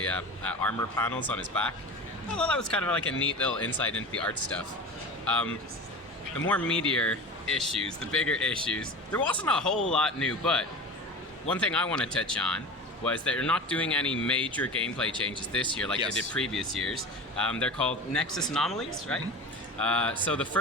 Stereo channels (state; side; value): normal; both; correlation 0.31